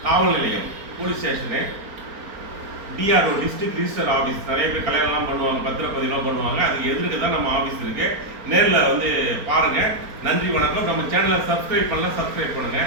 காவல் நிலையம் police station, DRO district register office. நிறைய பேர் கல்யாணம்லாம் பண்ணுவாங்க, பத்திரப்பதிலாம் பண்ணுவாங்க. அதுக்கு எதிர்க்கு தான் நம்ம ஆஃபீஸ் இருக்கு. நேரில் வந்து பாருங்க. நன்றி, வணக்கம். நம்ம சேனலை சப்ஸ்கிரைப் பண்ணலாம், சப்ஸ்கிரைப் பண்ணுங்க.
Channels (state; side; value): late; left; 4.4 ms